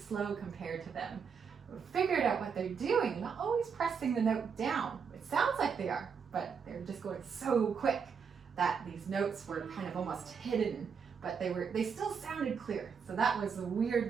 compared to them. I figured out what they're doing. They're not always pressing the note down. It sounds like they are, but they're just going so quick that these notes were kind of almost hidden, but they still sounded clear. So that was the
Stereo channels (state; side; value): quieter; left; 6.4 dB